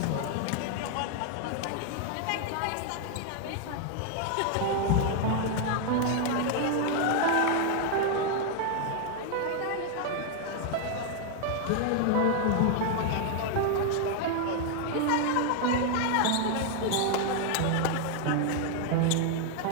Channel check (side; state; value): both; different; correlation 0.00